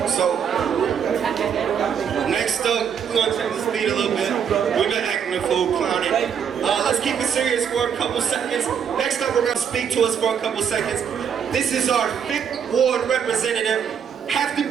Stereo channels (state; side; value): quieter; left; 7.7 dB